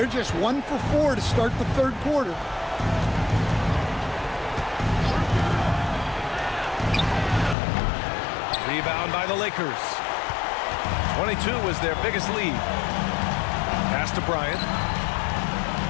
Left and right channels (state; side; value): drops out; right; at 7.6 s